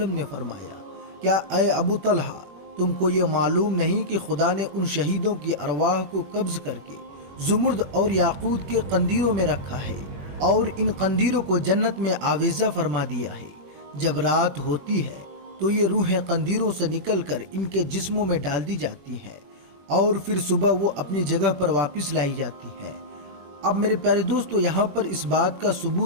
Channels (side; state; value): left; late; 21 ms